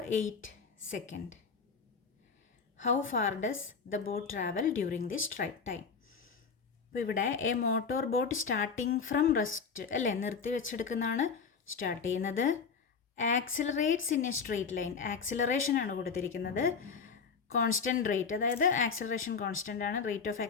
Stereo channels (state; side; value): quieter; right; 5.6 dB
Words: 8 second. How far does the boat travel during this time? അപ്പോൾ ഇവിടെ A motor boat starting from rest അല്ലേ, നിർത്തി വെച്ചെടുക്കുന്നതാണ് start ചെയ്യുന്നത്. Accelerates in A straight line, acceleration ആണ് കൊടുത്തിരിക്കുന്നത്. കോൺസ്റ്റൻറ്റ് റേറ്റ്, അതായത് ആക്സിലറേഷൻ കോൺസ്റ്റൻ്റ് ആണ്, റേറ്റ് ഓഫ്